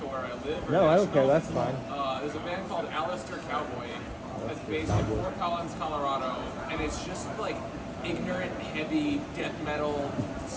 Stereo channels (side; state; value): both; identical; correlation 1.00